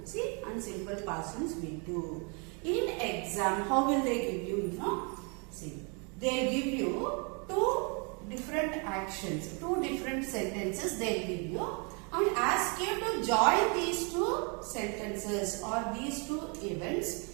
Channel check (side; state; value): left; quieter; 34.6 dB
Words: See, and simple past tense V2. In exam, how will they give you, See, they give you two different actions, two different sentences they give you and ask you to join these two sentences or these two events